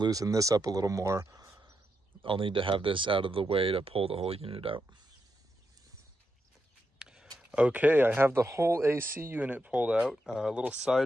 this up a little more, I'll need to have this out of the way to pull the whole unit out. Okay, I have the whole AC unit pulled out. A little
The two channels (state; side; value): normal; both; correlation 0.84